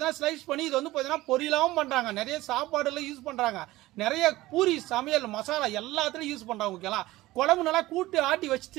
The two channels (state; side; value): quieter; left; 17.8 dB